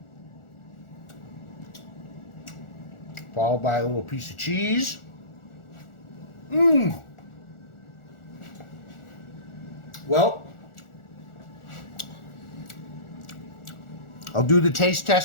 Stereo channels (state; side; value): late; right; 1.4 ms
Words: Followed by a little piece of cheese. Well, I'll do the taste